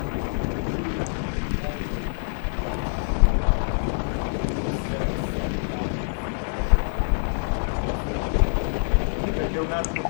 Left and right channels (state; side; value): silent; right; digital silence